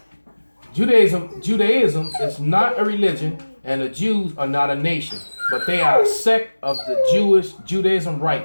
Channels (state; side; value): inverted; both; correlation -1.00